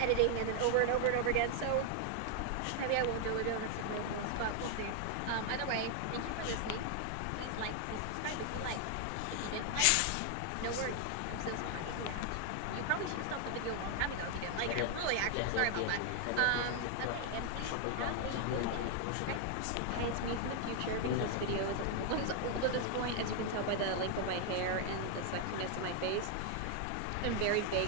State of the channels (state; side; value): different; both; correlation 0.00